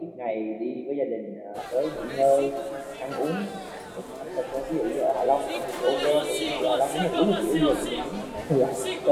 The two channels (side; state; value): both; identical; correlation 1.00